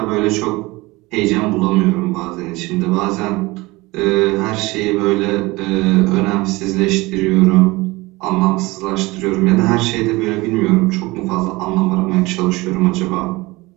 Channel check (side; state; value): left; quieter; 21.9 dB